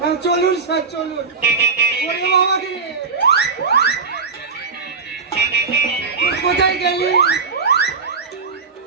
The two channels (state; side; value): quieter; left; 4.9 dB